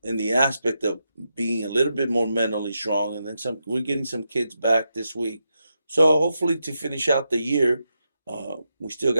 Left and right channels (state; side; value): inverted; both; correlation -0.85